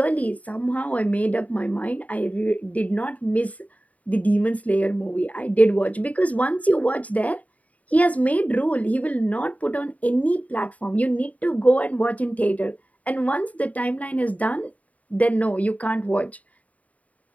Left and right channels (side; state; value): right; late; 0.070 ms